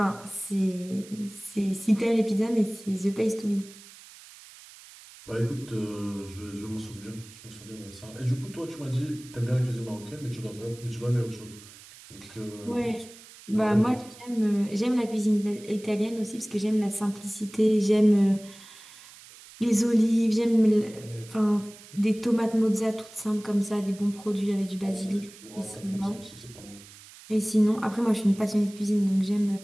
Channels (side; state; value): right; noise; hiss, 20 dB below the sound